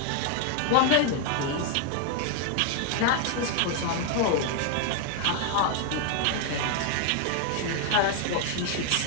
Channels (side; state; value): both; different; correlation 0.00